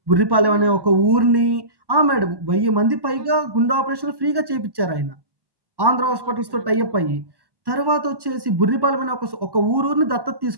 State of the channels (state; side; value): late; left; 1.1 ms